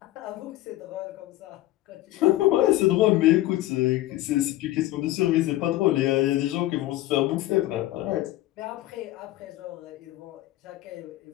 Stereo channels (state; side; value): quieter; right; 15.9 dB